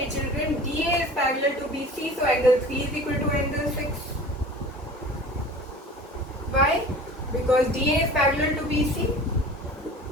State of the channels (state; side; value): normal; both; correlation 0.41